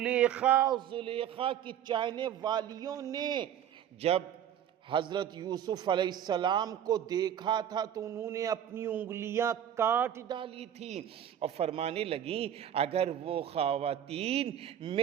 کی چاہنے والیوں نے جب حضرت یوسف علیہ السلام کو دیکھا تھا تو انہوں نے اپنی انگلیاں کاٹ ڈالی تھی اور فرمانے لگیں اگر وہ خواتین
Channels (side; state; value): left; quieter; 9.9 dB